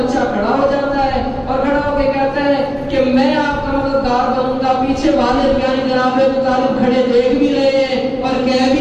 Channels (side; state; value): both; identical; correlation 1.00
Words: کھڑا ہو جاتا ہے اور کھڑا ہو کے کہتا ہے کہ میں آپ کا مددگار بنوں گا۔ پیچھے والد یعنی جناب ابو طالب کھڑے دیکھ بھی رہے ہیں اور کہہ بھی